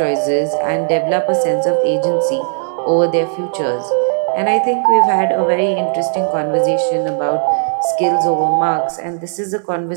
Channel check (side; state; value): left; silent; digital silence